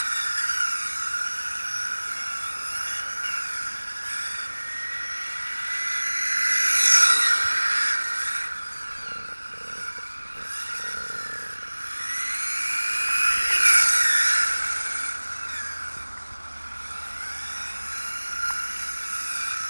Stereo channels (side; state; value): both; inverted; correlation -1.00